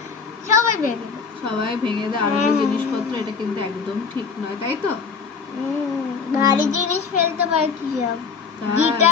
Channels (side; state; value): right; quieter; 5.5 dB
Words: সবাই ভেঙে দেয়। সবাই ভেঙে দেয় আর জিনিসপত্র, এটা কিন্তু একদম ঠিক নয়, তাই তো? ভারী জিনিস ফেলতে পারে কি সব,